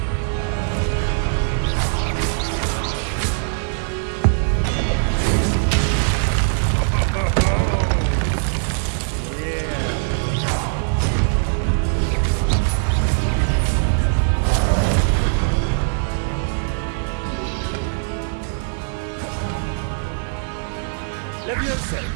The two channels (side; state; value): left; silent; 56 dB below the other